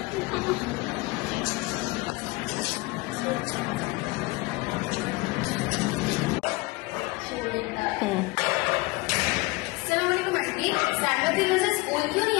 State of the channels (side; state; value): right; quieter; 23.5 dB